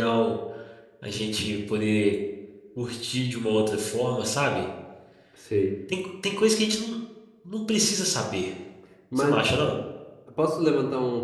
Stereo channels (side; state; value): both; identical; correlation 1.00